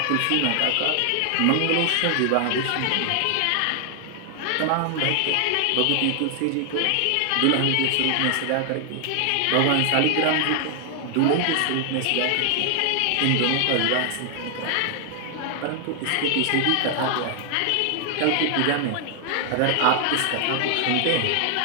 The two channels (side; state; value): both; different; correlation 0.00